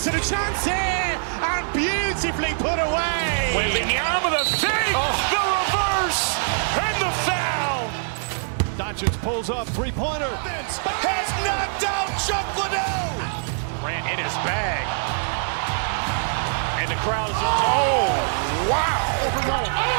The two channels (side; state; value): left; silent; 63 dB below the other